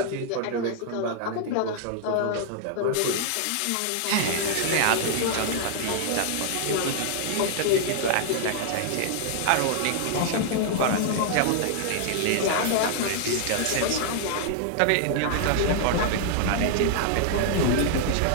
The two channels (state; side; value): different; both; correlation -0.01